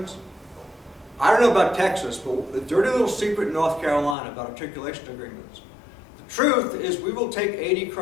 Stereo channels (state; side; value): drops out; right; at 4.2 s